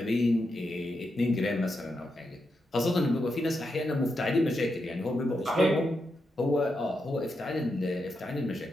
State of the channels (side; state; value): both; normal; correlation 0.85